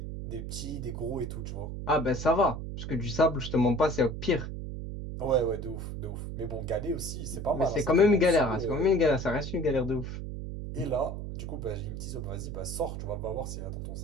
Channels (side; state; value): right; noise; hum, 6 dB below the sound